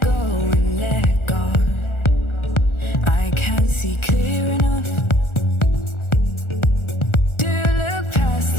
go and let God. I can't see clear enough to look past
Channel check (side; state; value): right; late; 1.4 ms